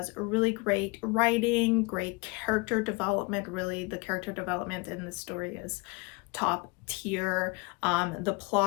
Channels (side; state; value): right; quieter; 28.2 dB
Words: really great writing, great character development. Really, the character development in this story is top tier. The